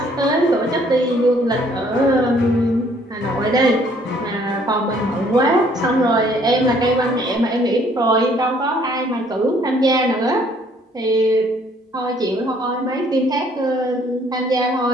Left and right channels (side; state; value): both; normal; correlation 0.62